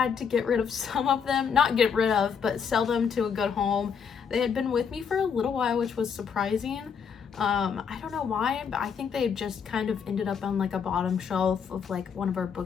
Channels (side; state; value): right; quieter; 6.7 dB